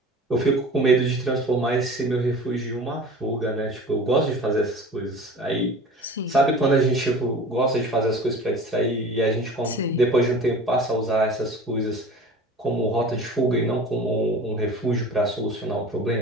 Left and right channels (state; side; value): normal; both; correlation 0.39